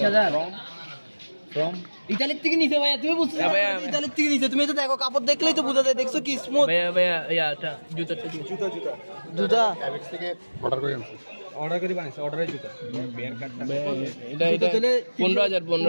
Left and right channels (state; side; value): inverted; both; correlation -1.00